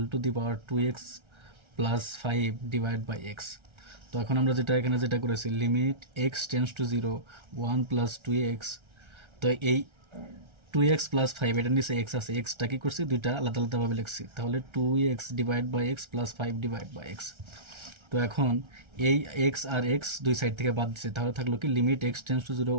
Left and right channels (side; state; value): left; late; 1.3 ms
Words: to the power 2x plus 5 divide by x. তো এখন আমরা যেটা করেছি limit x tends to 0 1 plus 2x। তো এই 2x প্লাস 5 এটার নিচে এক্স আছে, এক্সটা কি করছি দুইটা আলাদা আলাদাভাবে লিখছি, তাহলে 2x divide by x plus 5 divide by x. তো এখন এই এক্স আর এক্স দুই সাইড থেকে বাদ দিচ্ছে, তাহলে থাকলো কি limit x tends to 0